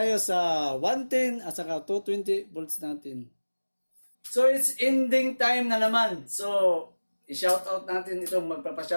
sa 110 at saka 220 volts natin. So, it's ending time na naman. So, i-shoutout natin itong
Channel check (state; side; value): inverted; both; correlation -1.00